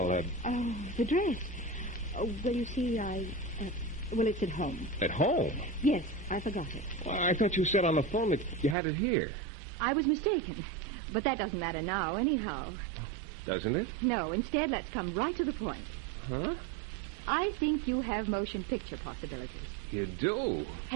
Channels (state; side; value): drops out; left; at 8.8 s